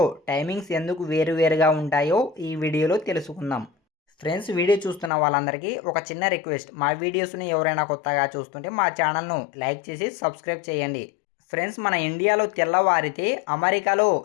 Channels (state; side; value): drops out; right; at 5.1 s